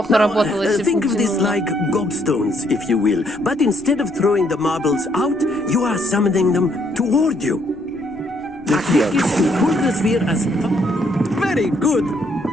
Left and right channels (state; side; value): noise; left; rumble, 24 dB below the sound